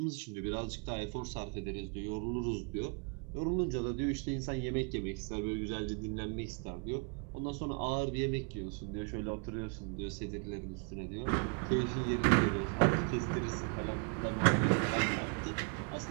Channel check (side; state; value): left; quieter; 36.9 dB